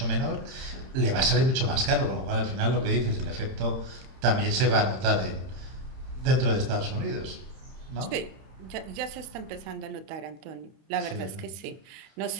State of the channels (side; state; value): left; late; 31 ms